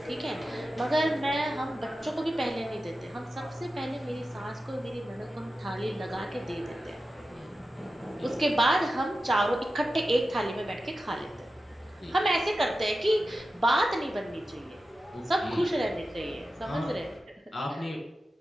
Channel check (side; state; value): both; normal; correlation 0.93